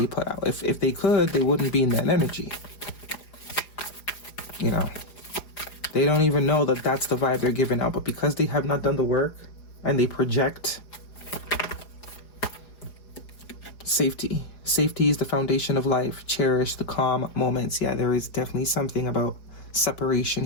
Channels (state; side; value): late; right; 4.9 ms